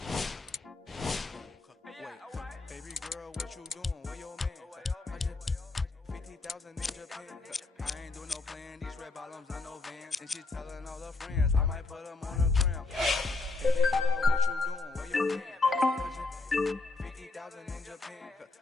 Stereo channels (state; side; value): quieter; right; 3.3 dB